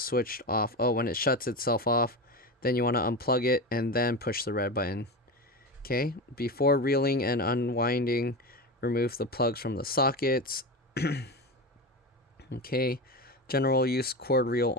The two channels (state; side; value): normal; both; correlation 0.22